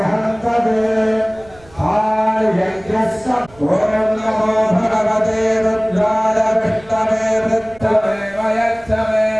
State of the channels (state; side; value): noise; right; rumble, 26 dB below the sound